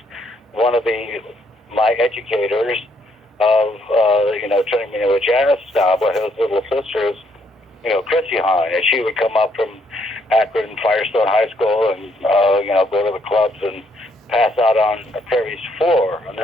one of my educators of turning me into a jazz snob, with his little sisters, Chrissy Hind, and she would come up from Akron Firestone High School and go to the clubs and pass out on Terry's floor, and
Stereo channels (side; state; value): both; normal; correlation 0.71